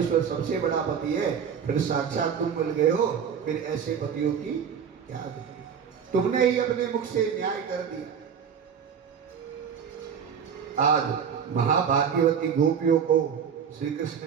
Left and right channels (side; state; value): left; quieter; 7.4 dB